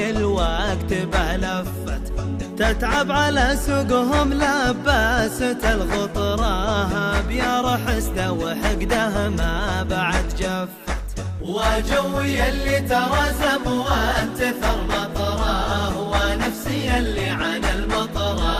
بلفت. تتعب على سوقهم لباسة الغطرة، بيرح حسده وحقده ما بعد جفت. وجوي اللي ترزم وانتثر مطراه، ونفسي اللي عن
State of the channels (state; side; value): identical; both; correlation 1.00